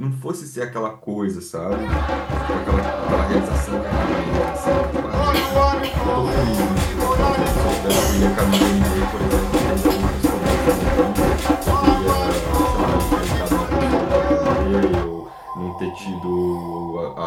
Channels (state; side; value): identical; both; correlation 1.00